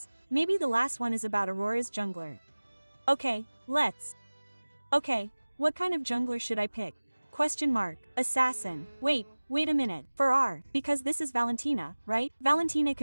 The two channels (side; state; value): both; inverted; correlation -1.00